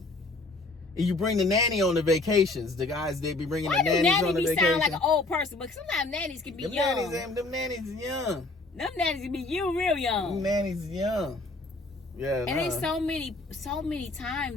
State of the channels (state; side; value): quieter; right; 3.1 dB